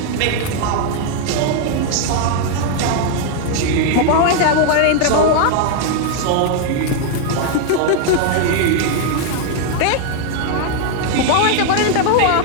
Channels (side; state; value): both; different; correlation 0.00